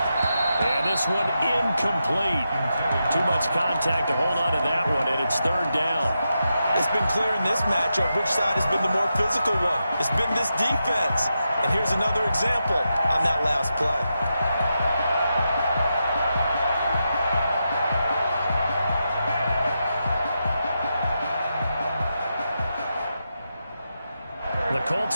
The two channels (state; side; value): inverted; both; correlation -0.87